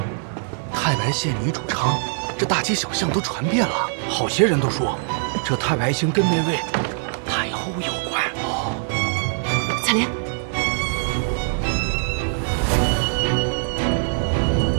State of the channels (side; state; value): left; silent; digital silence